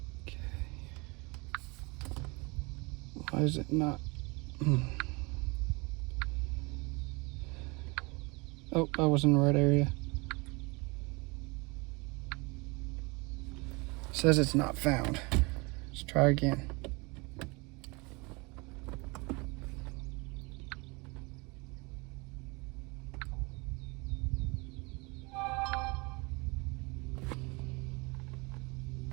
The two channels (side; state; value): left; quieter; 27.4 dB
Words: Okay. Why is it not? Oh, I was in the right area. Says it's not found. Let's try again.